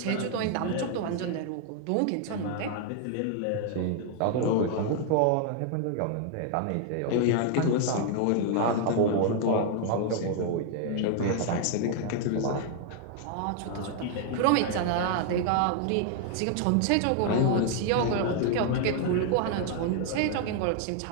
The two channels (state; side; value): different; both; correlation 0.00